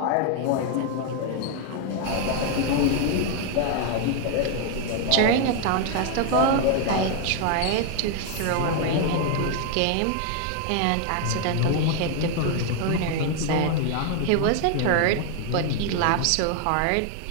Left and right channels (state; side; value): different; both; correlation 0.01